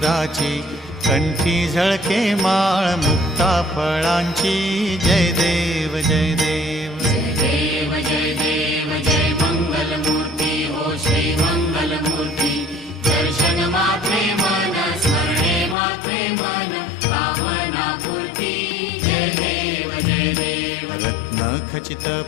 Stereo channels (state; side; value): drops out; right; at 15.8 s